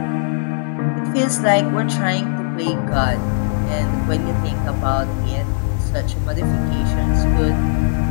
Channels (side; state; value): right; silent; digital silence